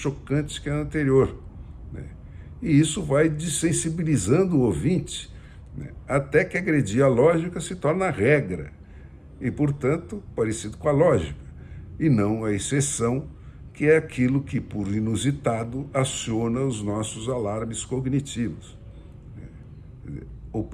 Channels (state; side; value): identical; both; correlation 1.00